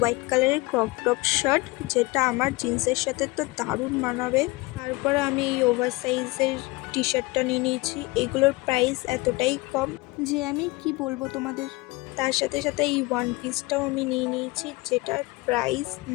কালারের ক্রপ টপ শার্ট, যেটা আমার জিন্সের সাথে তো দারুণ মানাবে। তারপরে আমি এই ওভার সাইজের টি শার্টটা নিয়ে নিয়েছি। এগুলোর প্রাইস এতটাই কম যে আমি কি বলবো তোমাদের। তার সাথে সাথে এই ওয়ান পিসটাও আমি নিয়ে নিয়েছি, যেটার প্রাইস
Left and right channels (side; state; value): right; quieter; 23.1 dB